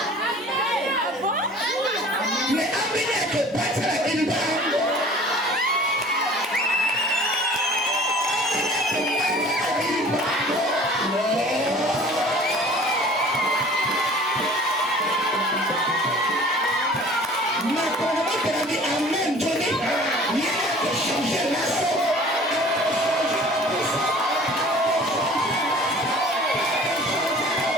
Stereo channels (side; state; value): both; normal; correlation 0.47